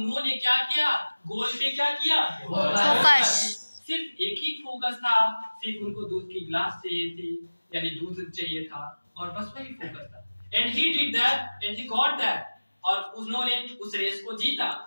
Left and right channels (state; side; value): inverted; both; correlation -1.00